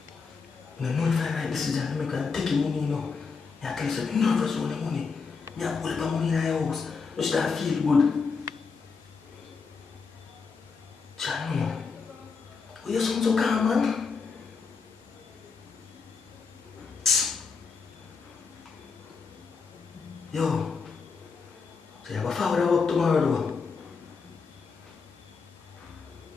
I know if I write this decision, I'm going to take your money, you know. I tell you, I'm nervous with the money. I pull up money in your house. I start feel good. Chano, why you sound so calm, man? Yo, so you have a father work tomorrow, though?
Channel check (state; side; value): quieter; right; 5.1 dB